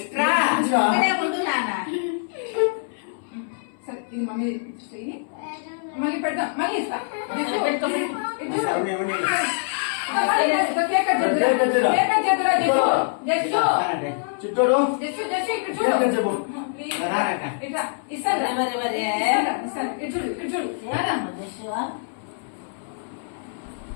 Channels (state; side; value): silent; right; 62 dB below the other